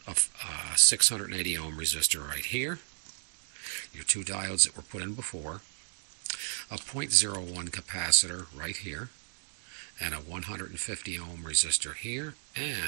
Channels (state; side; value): silent; left; 56 dB below the other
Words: a 680 ohm resistor right here. Your two diodes that were put in before. A 0.01 capacitor right here, and a 150 ohm resistor here,